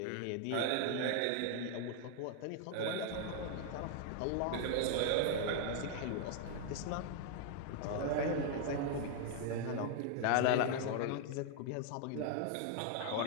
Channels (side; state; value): both; different; correlation 0.00